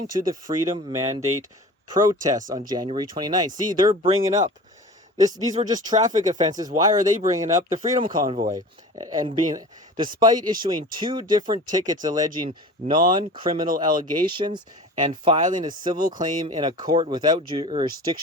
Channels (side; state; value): both; normal; correlation 0.38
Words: to the Freedom Mandate protests on January 29th. See, they're bringing up These were just traffic offenses. Why are they bringing up the Freedom Convoy? And despite issuing 2 different tickets alleging non-criminal allegations and filing a civil claim in a court without